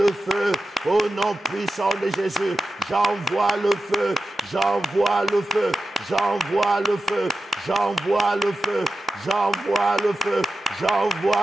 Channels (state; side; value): normal; both; correlation 0.92